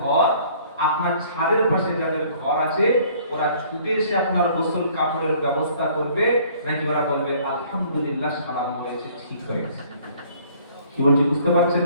আপনার ছাদের পাশে যাদের ঘর আছে, ওরা ছুটে এসে আপনার গোসল কাপড়ের ব্যবস্থা করবে, নাকি ওরা বলবে আলহামদুলিল্লাহ সালাম হয়েছে, ঠিক হয়েছে? কি বলছি বুঝতে পারছেন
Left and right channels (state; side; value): inverted; both; correlation -0.57